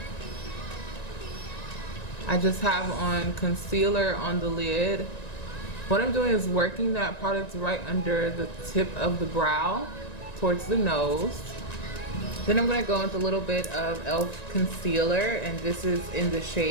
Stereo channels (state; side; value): late; right; 1.9 ms